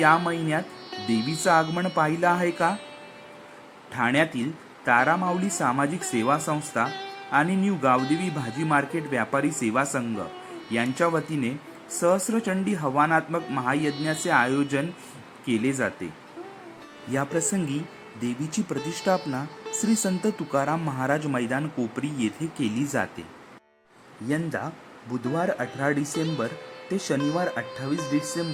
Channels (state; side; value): identical; both; correlation 1.00